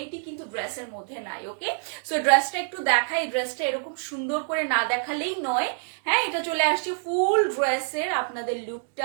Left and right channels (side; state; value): left; silent; digital silence